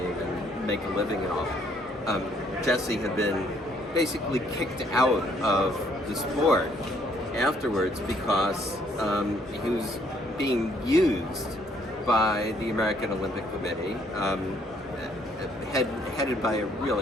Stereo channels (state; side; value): normal; both; correlation 0.66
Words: and make a living and all. Jesse had been basically kicked out of the sport afterwards because he was being used by the American Olympic Committee, headed by a